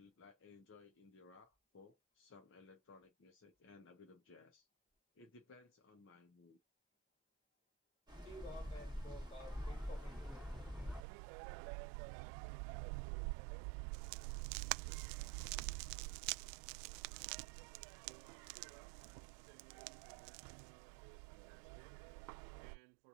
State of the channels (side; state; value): left; drops out; at 11.0 s